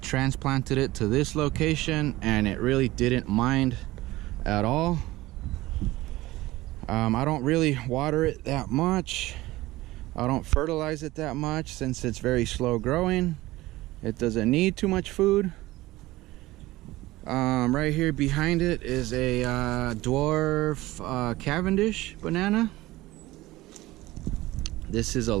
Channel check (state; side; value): quieter; left; 18.2 dB